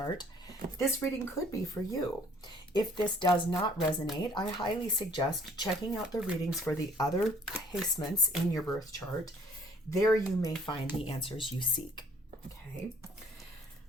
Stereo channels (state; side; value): normal; both; correlation 0.58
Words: this reading could be for you. If this does not resonate, I highly suggest checking out the readings for the other placements in your birth chart. There you may find the answers you seek. Okay.